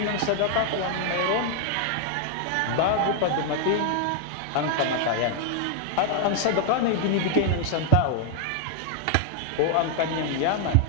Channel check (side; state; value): both; different; correlation 0.00